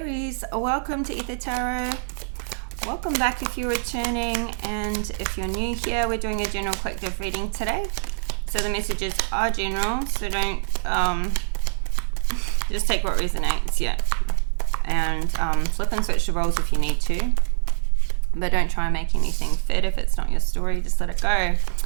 welcome to Ether Tarot. Welcome back if you're returning, and if you're new here, we're doing a general collective reading today. So the messages are general, so don't just take what resonates, and flip and switch the roles if you need to, but don't try and make anything fit. If it's not your story, just let it go.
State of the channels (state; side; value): silent; left; 62 dB below the other